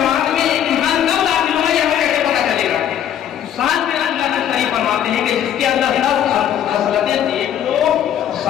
में इंसान कब दाखिल होगा ये हमें कैसे पता चलेगा? साहिब बिन अब्दुल्लाह मुस्तरी फरमाते हैं कि जिसके अंदर 10 खसलतें देख लो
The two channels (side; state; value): right; quieter; 10.1 dB